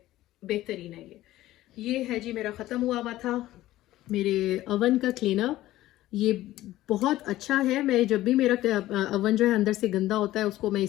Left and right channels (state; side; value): quieter; right; 15.5 dB